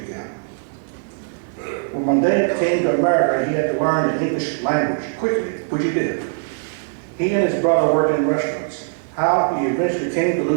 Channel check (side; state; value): left; silent; 65 dB below the other